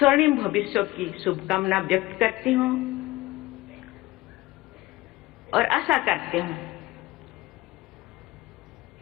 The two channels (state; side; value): quieter; right; 18.9 dB